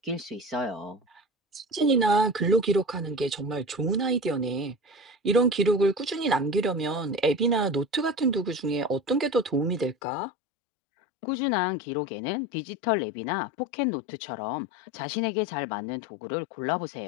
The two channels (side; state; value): right; drops out; at 10.0 s